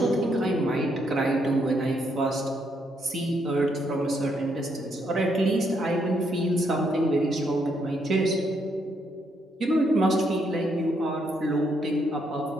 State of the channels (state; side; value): normal; both; correlation 0.75